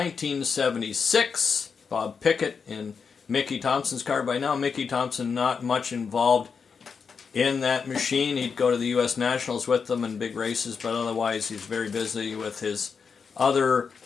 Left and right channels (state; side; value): quieter; right; 5.8 dB